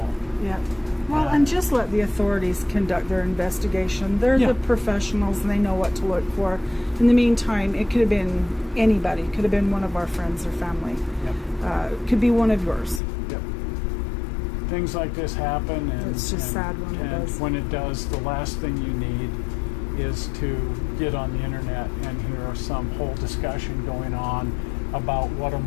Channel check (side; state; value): right; drops out; at 13.0 s